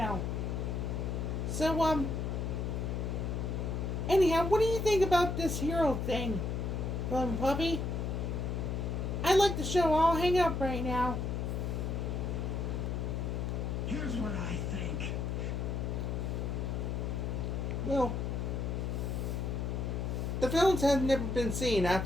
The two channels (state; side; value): noise; left; hum, 1 dB below the sound